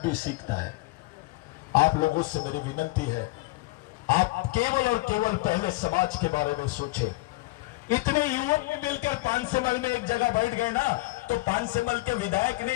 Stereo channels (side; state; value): right; quieter; 21.4 dB